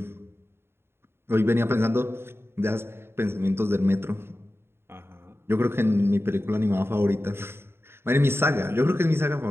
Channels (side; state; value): left; late; 0.12 ms